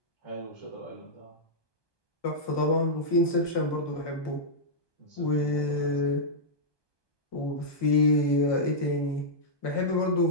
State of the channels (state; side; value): late; right; 1.2 ms